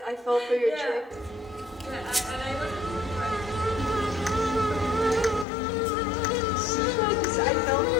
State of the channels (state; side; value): drops out; right; at 5.5 s